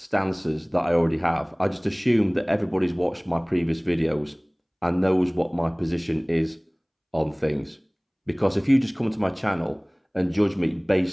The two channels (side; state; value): both; identical; correlation 1.00